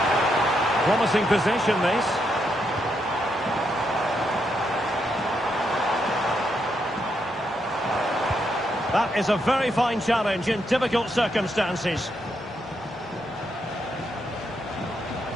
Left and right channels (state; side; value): normal; both; correlation 0.80